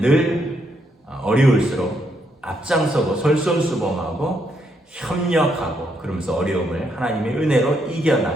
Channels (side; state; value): both; normal; correlation 0.76